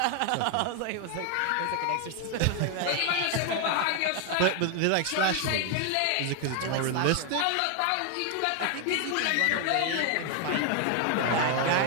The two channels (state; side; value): different; both; correlation 0.01